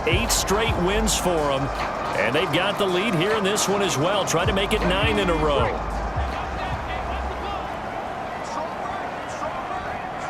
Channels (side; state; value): both; identical; correlation 1.00